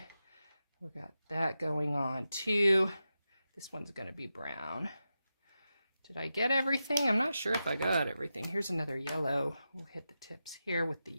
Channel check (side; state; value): both; inverted; correlation -0.90